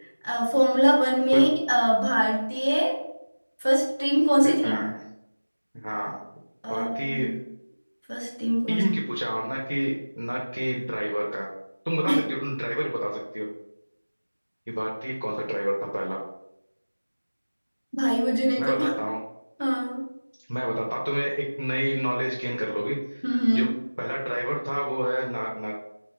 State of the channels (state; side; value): inverted; both; correlation -1.00